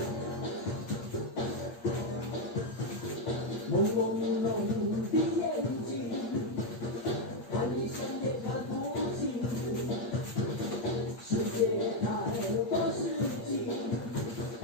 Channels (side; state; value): right; late; 8.5 ms